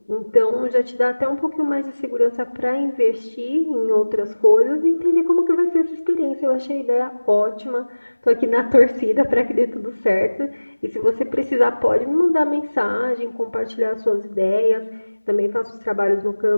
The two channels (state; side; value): inverted; both; correlation -1.00